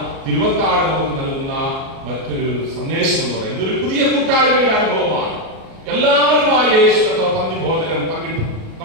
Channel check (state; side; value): late; left; 37 ms